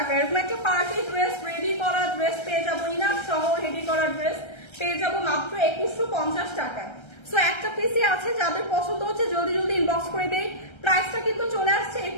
এরকম একটা পার্টি ড্রেস, রেডি করা ড্রেস পেয়ে যাবো, ইনার সহ রেডি করা ড্রেস পেয়ে যাবো মাত্র 2150 টাকায়। সো একটা পিসি আছে, যাদের পছন্দ হচ্ছে জলদি জলদি ইনবক্স করে দেই। প্রাইসটা কিন্তু চলে আসছে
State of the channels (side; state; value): right; late; 1.3 ms